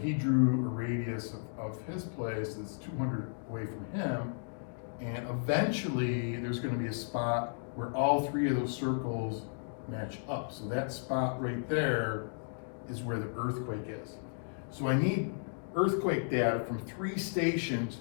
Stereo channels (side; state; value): right; silent; digital silence